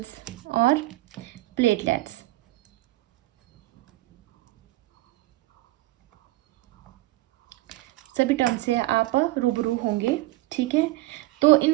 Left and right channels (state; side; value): quieter; left; 18.7 dB